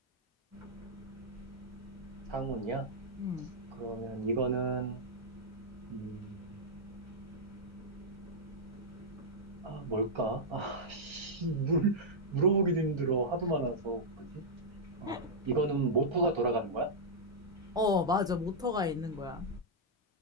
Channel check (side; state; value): both; normal; correlation -0.07